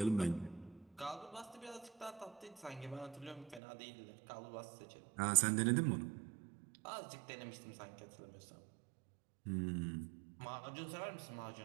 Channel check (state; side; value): drops out; left; at 3.6 s